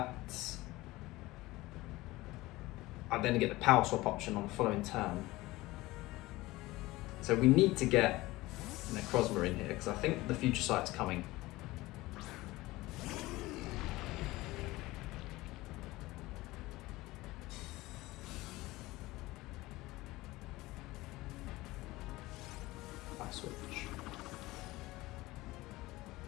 I then get the power swap option on the following turn. So we need to get Necrozma in here because I think the Future Sight's coming. I switch.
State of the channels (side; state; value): right; quieter; 19.3 dB